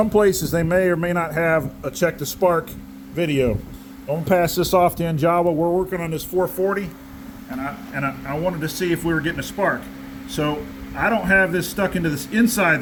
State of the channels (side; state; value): both; identical; correlation 1.00